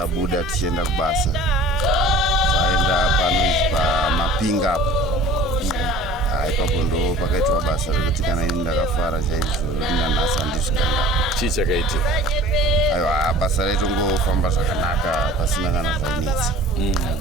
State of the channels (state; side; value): normal; both; correlation 0.45